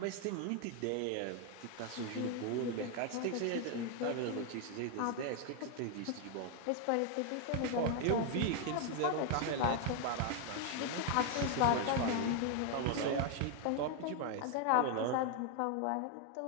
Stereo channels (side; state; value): both; different; correlation 0.01